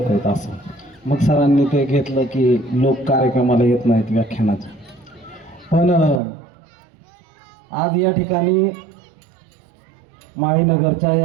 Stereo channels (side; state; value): left; drops out; at 6.2 s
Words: आहेत असं. मग सरांनी ते घेतलं की लोक कार्यक्रमाला येत नाहीत व्याख्यानाच्या. पण आज या ठिकाणी माळीनगरच्या